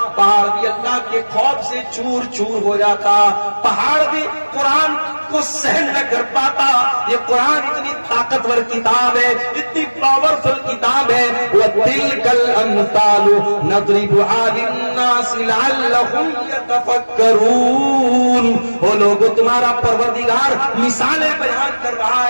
پہاڑ بھی اللہ کے خوف سے چور چور ہو جاتا، پہاڑ بھی قرآن کو سہن نہ کر پاتا۔ یہ قرآن اتنی طاقتور کتاب ہے، اتنی پاورفل کتاب ہے۔ وَتِلْكَ الْأَمْثَالُ نَضْرِبُهَا لِلنَّاسِ لَعَلَّهُمْ يَتَفَكَّرُونَ۔ وہ لوگوں تمہارا پروردگار مثالیں بیان کر رہا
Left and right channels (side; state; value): both; inverted; correlation -1.00